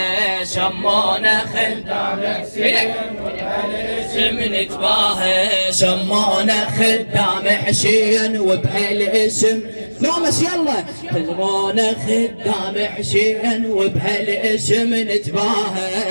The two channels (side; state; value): both; inverted; correlation -1.00